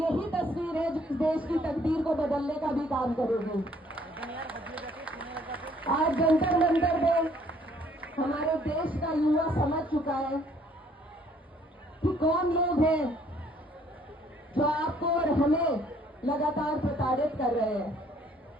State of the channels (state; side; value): normal; both; correlation 0.62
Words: तस्वीर है जो देश की तकदीर को बदलने का भी काम करेगी। आज जंतर मंतर में हमारे देश का युवा समझ चुका है कि कौन लोग हैं जो आपको और हमें लगातार प्रताड़ित कर रहे हैं।